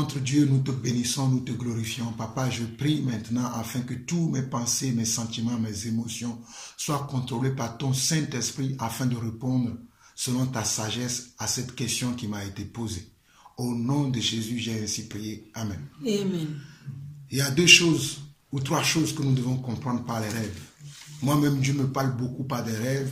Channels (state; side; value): identical; both; correlation 1.00